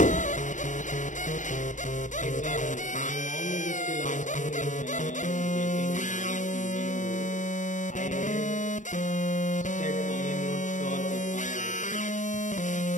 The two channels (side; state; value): right; late; 0.36 ms